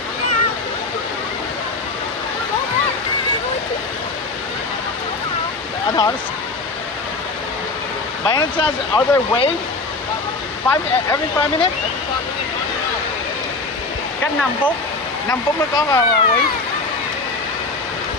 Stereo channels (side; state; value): right; quieter; 3.5 dB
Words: I thought it's... By any chance, are there waves? Every 5 minutes? Cách 5 phút. 5 phút mới có wave.